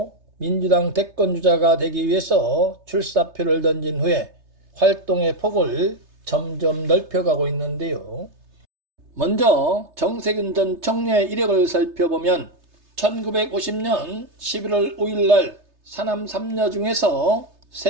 민주당 대권주자가 되기 위해서 출사표를 던진 후에 활동의 폭을 점점 넓혀가고 있는데요. 먼저 정세균 전 총리의 이력을 살펴보면 1950년 11월 5일 날 사남 3녀 중에서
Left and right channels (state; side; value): late; left; 3.3 ms